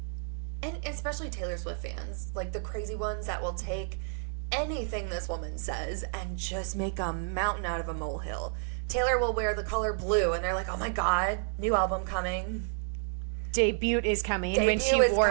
especially Taylor Swift fans, the crazy ones that will take anything this woman says and just make a mountain out of a molehill. Taylor will wear the color blue and they're like, oh my God, new album coming. Debut is coming. When she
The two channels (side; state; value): left; silent; 58 dB below the other